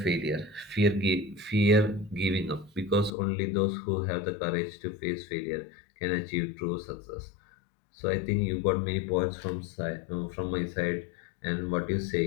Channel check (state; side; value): drops out; right; at 3.1 s